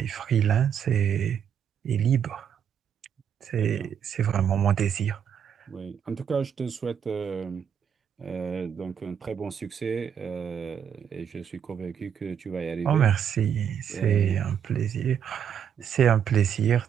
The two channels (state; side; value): quieter; left; 8.2 dB